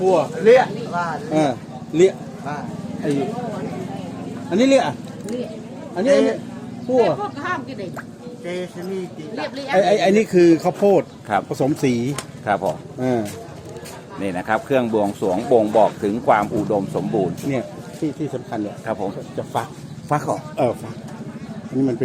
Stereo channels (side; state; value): both; identical; correlation 1.00